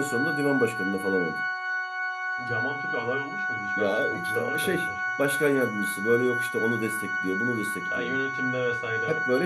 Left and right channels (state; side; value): identical; both; correlation 1.00